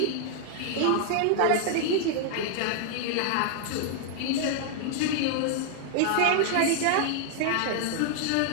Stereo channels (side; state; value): both; different; correlation 0.00